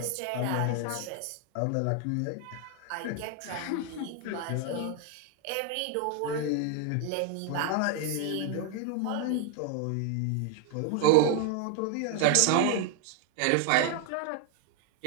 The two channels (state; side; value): different; both; correlation 0.00